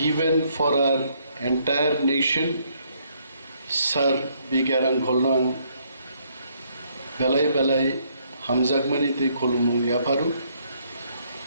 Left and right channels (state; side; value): inverted; both; correlation -0.69